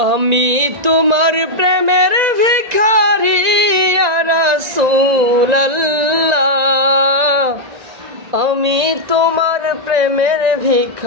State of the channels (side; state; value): left; late; 1.9 ms